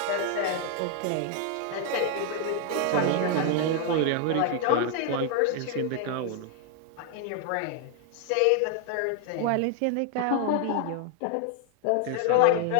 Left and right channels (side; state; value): both; different; correlation 0.00